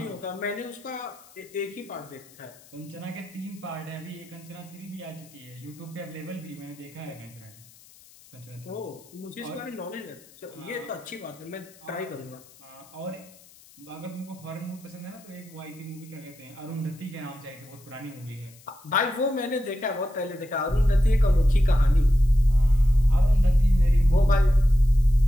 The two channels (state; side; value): noise; left; hiss, 24 dB below the sound